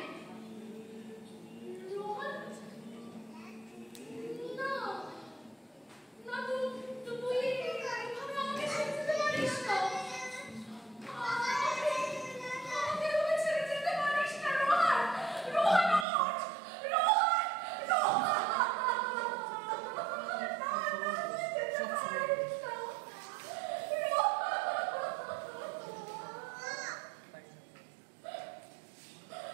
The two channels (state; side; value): drops out; left; at 16.1 s